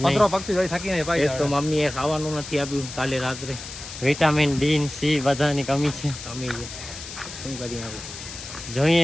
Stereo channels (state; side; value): noise; left; hiss, 11 dB below the sound